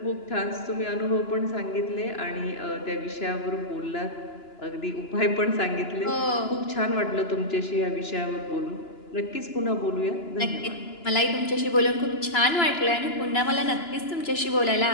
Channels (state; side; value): late; right; 2.9 ms